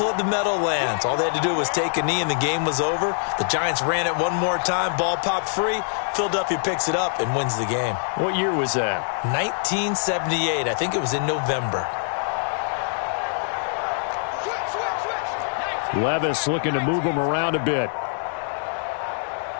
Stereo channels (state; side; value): silent; right; digital silence